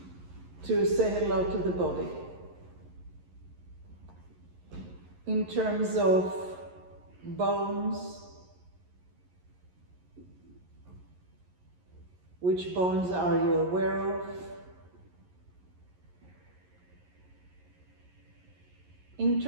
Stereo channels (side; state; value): left; late; 11 ms